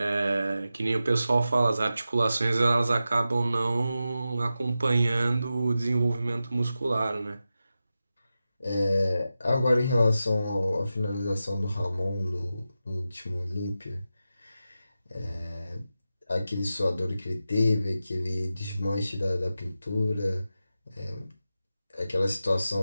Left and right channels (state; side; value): inverted; both; correlation -0.91